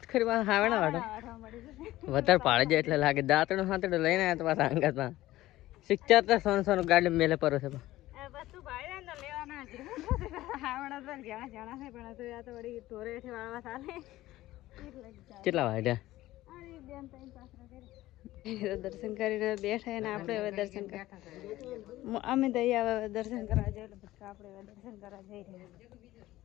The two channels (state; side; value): quieter; right; 16.2 dB